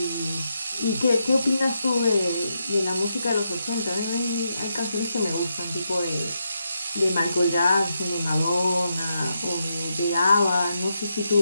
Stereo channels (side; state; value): both; inverted; correlation -0.83